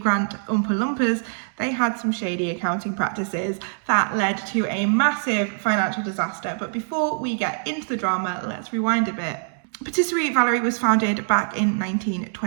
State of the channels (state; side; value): silent; left; digital silence